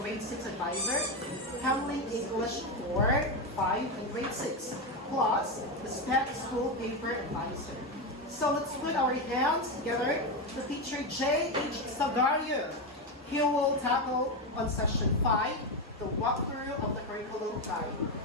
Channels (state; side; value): normal; both; correlation 0.12